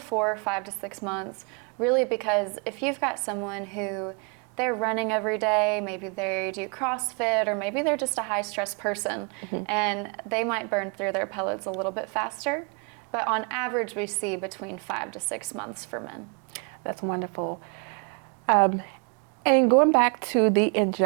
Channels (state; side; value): quieter; left; 36.6 dB